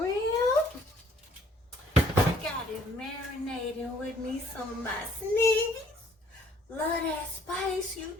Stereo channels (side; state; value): both; normal; correlation 0.61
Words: I got it marinating with me some of my Sneevy Love That Spice. You